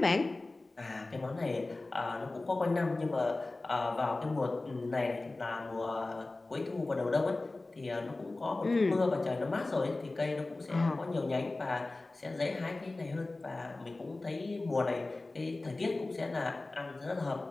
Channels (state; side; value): quieter; right; 3.1 dB